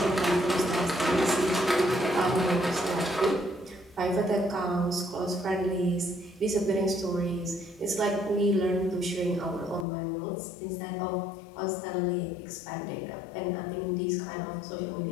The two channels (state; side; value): drops out; right; at 9.9 s